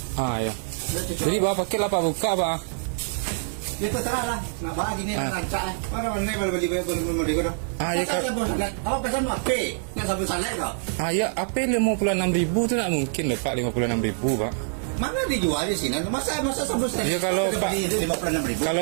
Jadi bawa paket lah pak buka pak. Ya terserah lah. Nak bagi ni rancak lah. Mana mana boleh beli beli kau. Ya kalau awak pesan apa? Nak sabun salad kau? Ya apa 56.000 tu tak mungkin lah pak 56.000 pak. Mana dijual di sini? Masa sabun salad? Ya kalau pak 56.000.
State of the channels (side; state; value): left; silent; digital silence